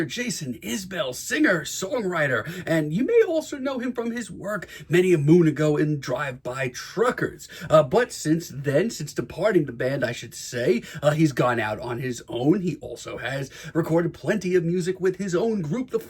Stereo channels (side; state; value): both; identical; correlation 1.00